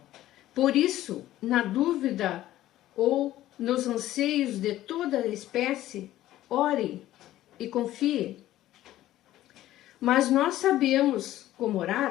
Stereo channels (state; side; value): quieter; right; 14.3 dB